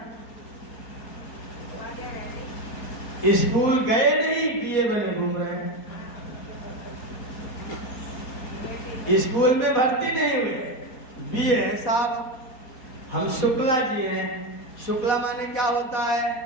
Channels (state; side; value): late; right; 4.3 ms